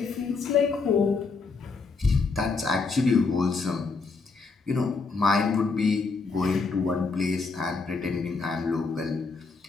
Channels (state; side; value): quieter; right; 4.3 dB